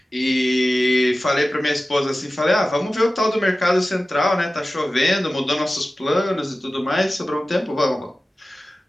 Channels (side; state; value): both; normal; correlation 0.95